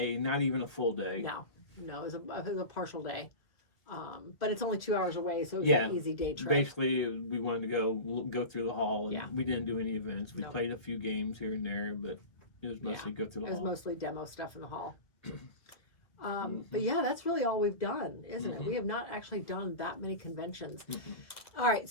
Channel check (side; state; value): right; late; 1.6 ms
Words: not even a full day. No, it was a partial day. But it's only 2 hours away, so it was an easy day trip. Basically, we wanted to go through the hall. And we didn't do any events. We played a few games here and there, but it was mostly go through the hall. It was mostly demo stuff in the hall. But yeah, that's really all we've done, isn't it? We have not actually done that many conventions. All right,